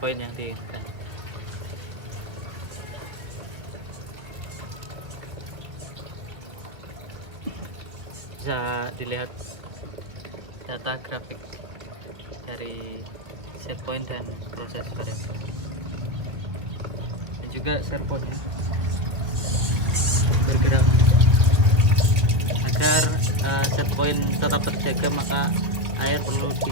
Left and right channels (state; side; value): late; left; 1.6 ms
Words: yang diinginkan. Bisa dilihat data grafik dari set point dan proses variasi, dan juga servonya bergerak agar set point tetap terjaga. Maka